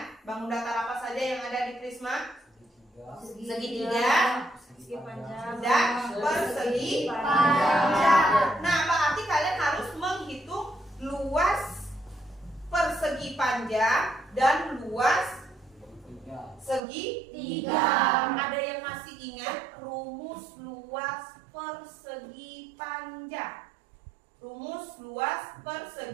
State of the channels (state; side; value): drops out; left; at 16.8 s